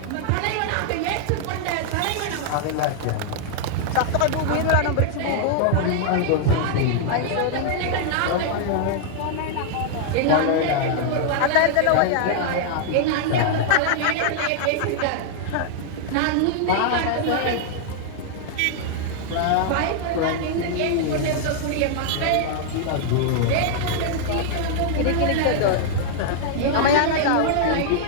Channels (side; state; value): both; different; correlation -0.01